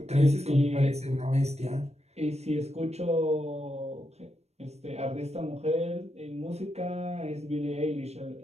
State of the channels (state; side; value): late; left; 0.31 ms